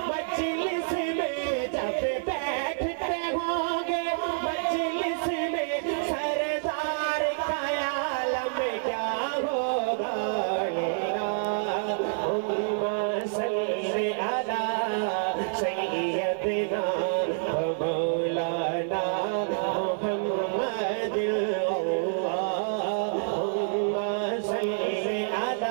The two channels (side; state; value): left; silent; 59 dB below the other